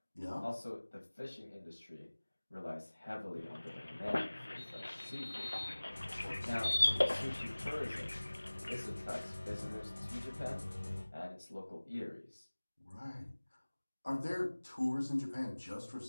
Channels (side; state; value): both; inverted; correlation -1.00